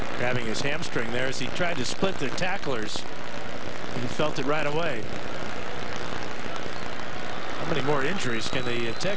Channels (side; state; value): both; identical; correlation 1.00